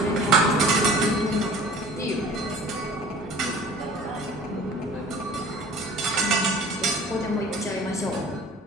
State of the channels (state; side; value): normal; both; correlation 0.44